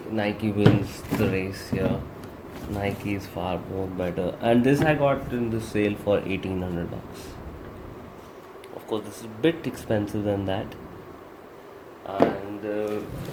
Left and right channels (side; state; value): both; identical; correlation 1.00